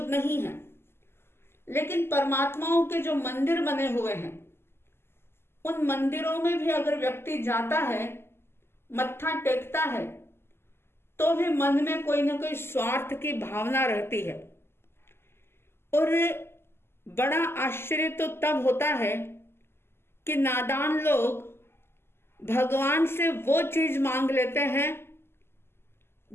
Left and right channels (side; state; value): right; late; 0.12 ms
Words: नहीं है, लेकिन परमात्माओं के जो मंदिर बने हुए हैं उन मंदिरों में भी अगर व्यक्ति जाता है, मत्था टेकता है, तो भी मन में कोई ना कोई स्वार्थ की भावना रहती है। और बड़ा आश्चर्य तो तब होता है कि नादान लोग भगवान से वो चीज मांग लेते हैं